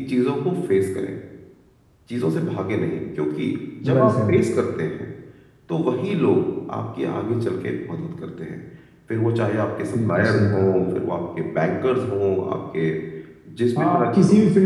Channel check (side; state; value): both; identical; correlation 1.00